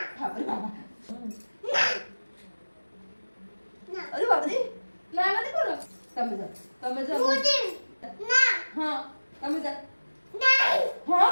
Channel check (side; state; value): both; inverted; correlation -1.00